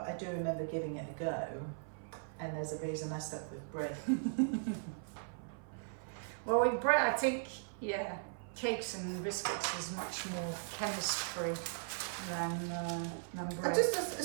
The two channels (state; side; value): silent; left; 52 dB below the other